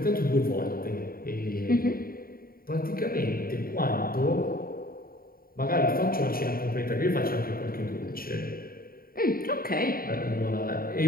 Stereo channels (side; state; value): right; late; 0.43 ms